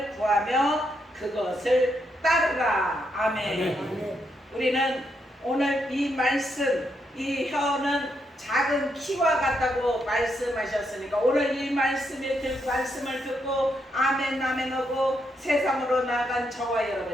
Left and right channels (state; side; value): normal; both; correlation 0.79